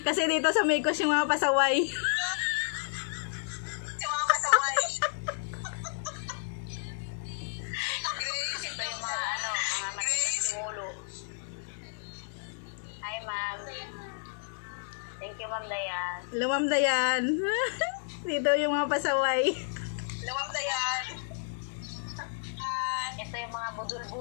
Kasi dito sa Mekos yung mga pasaway. Yung mga pasaway. Grace, ito yung mga Simulo. Hi, ma'am. Thank you, Ma'am Dayan. Hello, Ma'am Dayan. Dito yung mga pasaway. Ma'am Dayan. Ito yung mga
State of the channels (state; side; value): silent; right; digital silence